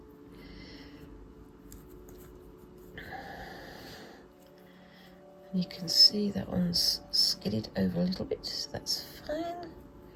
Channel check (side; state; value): both; identical; correlation 1.00